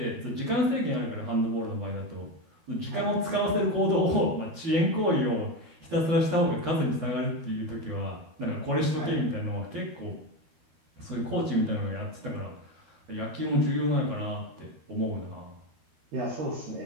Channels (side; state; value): left; late; 13 ms